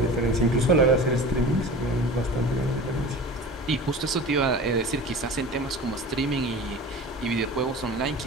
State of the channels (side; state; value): both; normal; correlation 0.36